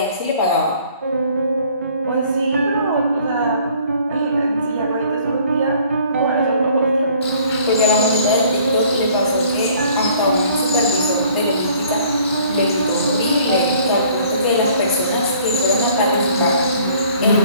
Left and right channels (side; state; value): both; inverted; correlation -0.57